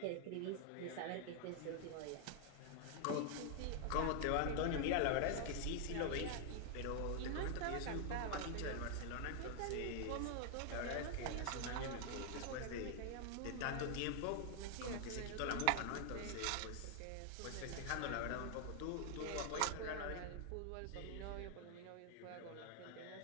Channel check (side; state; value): both; different; correlation 0.00